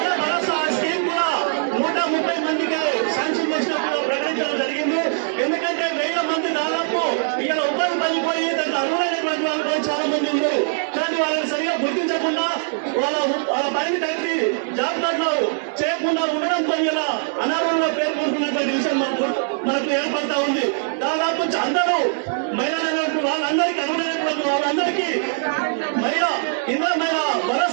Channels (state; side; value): silent; left; 59 dB below the other